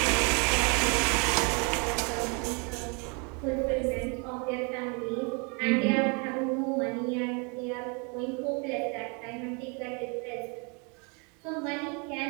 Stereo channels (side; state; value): left; quieter; 33.7 dB